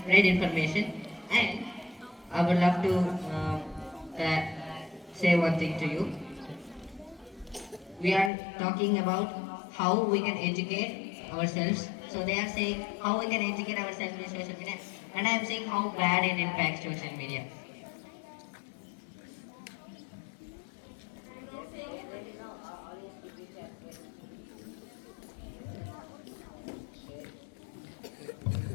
spread information. And I would love to uh, say one thing to you. We are talking about how we can educate ourselves. So they are saying how we can educate ourselves with social media, and I am saying how bad it impacts social media.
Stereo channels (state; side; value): drops out; right; at 8.3 s